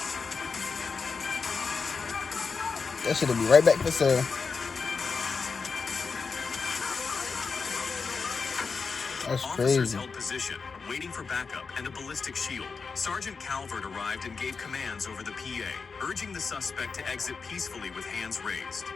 That shit'll be right back for sale. That's Officers crazy. held position, waiting for backup and a ballistic shield. Sergeant Calvert arrived and gave commands over the PA, urging the suspect to exit peacefully with hands raised.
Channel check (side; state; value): right; quieter; 5.0 dB